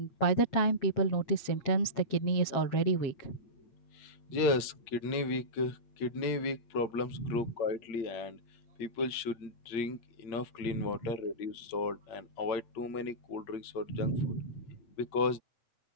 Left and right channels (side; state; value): right; late; 8.8 ms